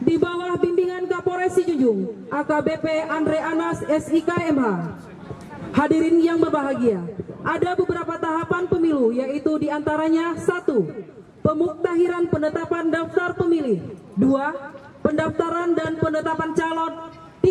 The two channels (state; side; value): identical; both; correlation 1.00